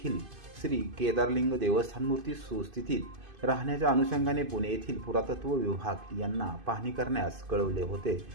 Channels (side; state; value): left; late; 2.5 ms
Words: श्री केदारलिंग देवस्थान मूर्ती सुस्थितीत राहण्याच्या अनुषंगाने पुणे येथील पुरातत्व विभाग यांना पाहणी करण्यास कळवले होते।